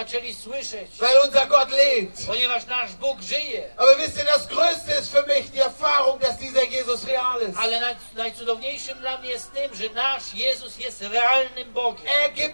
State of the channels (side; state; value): both; inverted; correlation -1.00